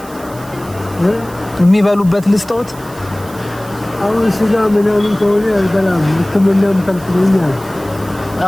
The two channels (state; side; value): noise; right; hiss, 21 dB below the sound